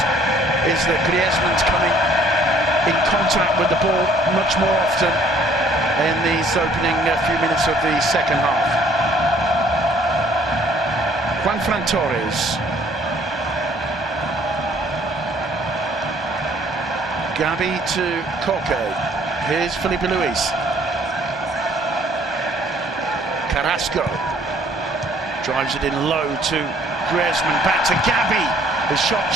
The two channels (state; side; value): normal; both; correlation 0.60